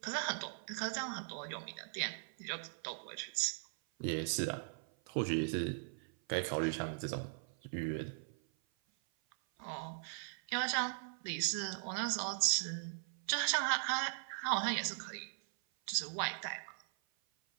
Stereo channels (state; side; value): silent; left; 51 dB below the other